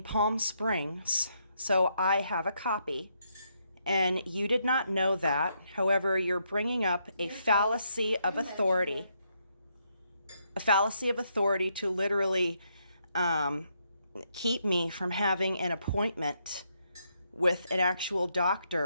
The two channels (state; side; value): inverted; both; correlation -0.76